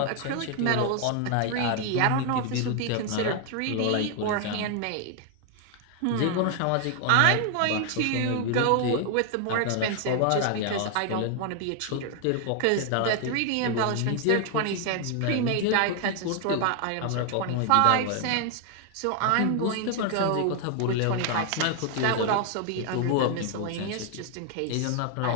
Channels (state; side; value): different; both; correlation 0.00